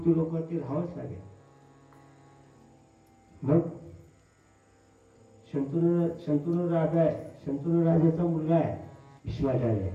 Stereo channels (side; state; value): both; identical; correlation 1.00